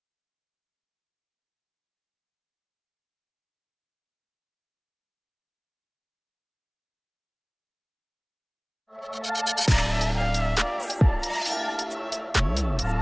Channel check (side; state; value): both; identical; correlation 1.00